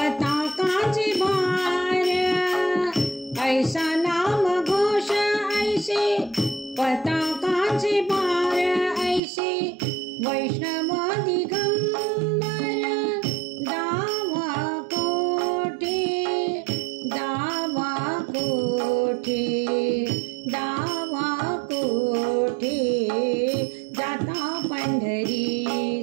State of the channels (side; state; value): left; drops out; at 9.2 s